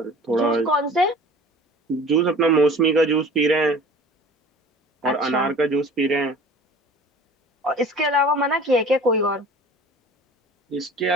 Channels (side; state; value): both; normal; correlation 0.44